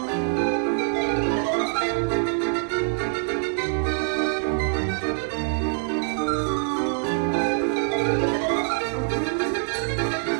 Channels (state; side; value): silent; left; 59 dB below the other